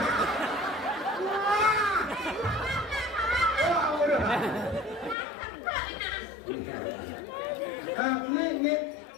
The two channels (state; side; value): drops out; right; at 5.2 s